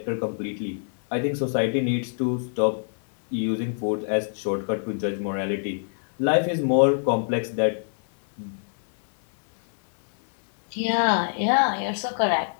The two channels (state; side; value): silent; right; 58 dB below the other